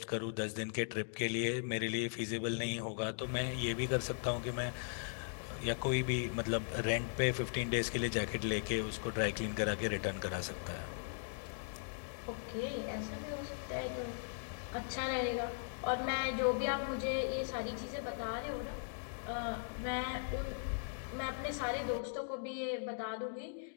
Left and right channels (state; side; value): silent; right; digital silence